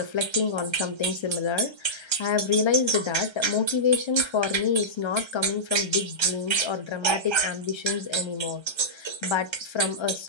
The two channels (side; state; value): right; late; 1.3 ms